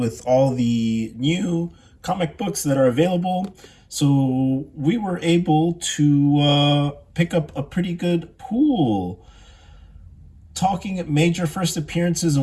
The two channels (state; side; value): identical; both; correlation 1.00